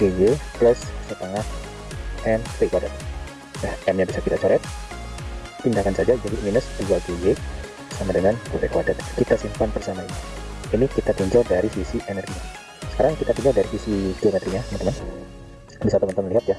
plus setengah MV kuadrat. Nah, M-nya bisa kita coret, pindahkan saja jadi minus 2GY sama dengan V kuadrat. Kita simpan bersama ini. Ini kita tinjau dari sisi energinya. Sekarang kita tinjau dari sisi geometrinya, teman-teman. Bisa teman-teman lihat ya,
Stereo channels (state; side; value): identical; both; correlation 1.00